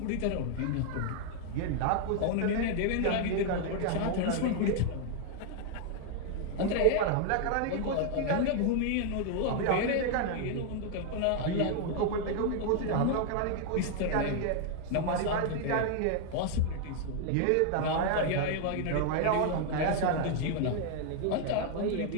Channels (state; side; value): different; both; correlation 0.00